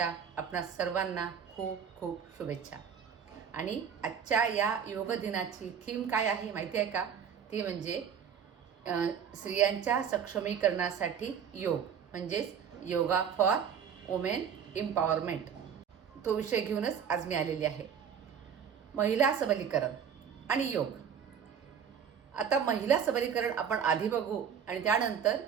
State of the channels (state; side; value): quieter; left; 7.7 dB